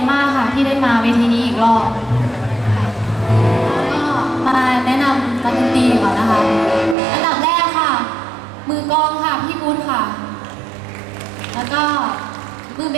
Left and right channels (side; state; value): left; drops out; at 7.0 s